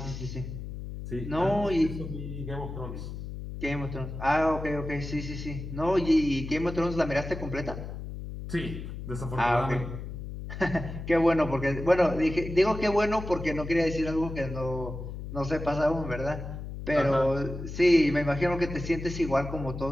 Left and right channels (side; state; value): left; noise; hum, 8 dB below the sound